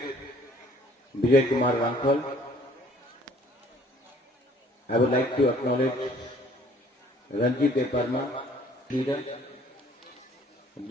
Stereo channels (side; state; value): both; normal; correlation 0.57